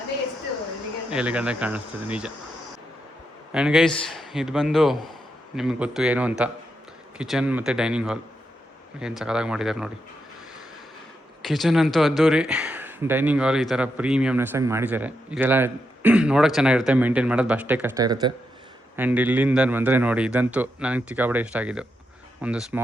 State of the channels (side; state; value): both; normal; correlation 0.84